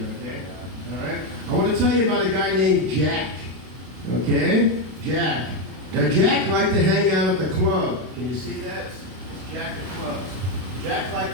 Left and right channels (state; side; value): late; left; 32 ms